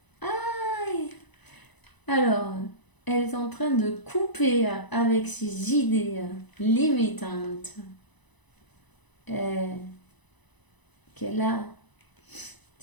Ay. Alors, elle est en train de couper avec ses idées limitantes qu'elle a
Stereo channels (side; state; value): right; late; 1.0 ms